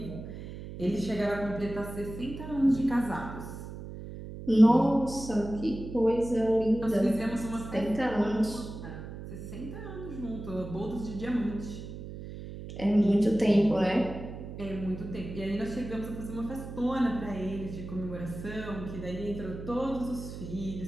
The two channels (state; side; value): noise; right; hum, 10 dB below the sound